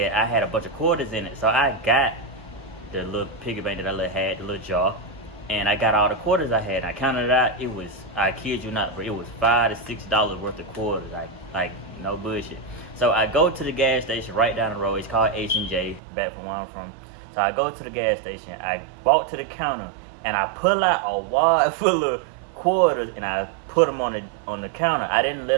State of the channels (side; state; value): left; drops out; at 16.0 s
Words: I had a bunch of quarters in it. So I got the little piggy bank that I had, the little jar, and I got all the quarters I had. And I counted it out. It was, I kid you not, but it was $5 to $6 worth of quarters. Like no bullshit. So I go to the gas station right down the road. It's called H&J, back from where I'm from. So I go to the gas station. I walk to the counter, and I pull out a wad full of quarters, and I put them on the counter. I didn't let